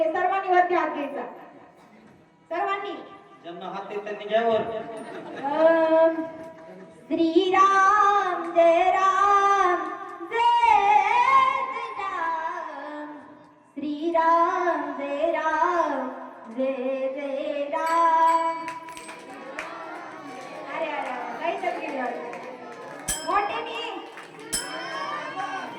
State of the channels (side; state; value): both; identical; correlation 1.00